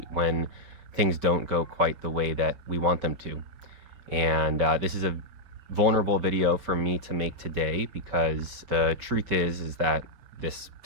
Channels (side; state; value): left; late; 5.2 ms